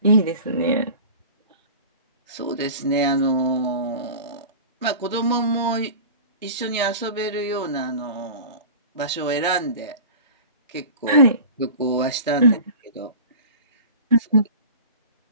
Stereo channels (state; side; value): inverted; both; correlation -0.37